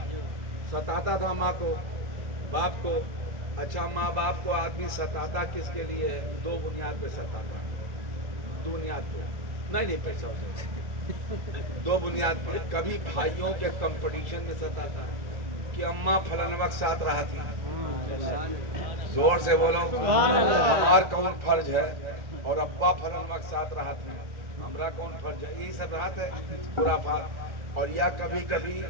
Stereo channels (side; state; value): left; late; 1.4 ms